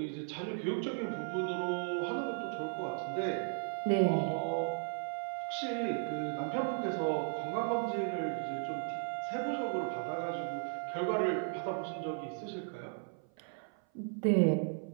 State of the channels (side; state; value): left; silent; 54 dB below the other